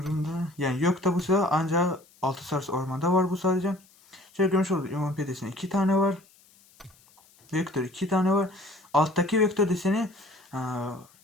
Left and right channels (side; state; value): left; noise; hiss, 29 dB below the sound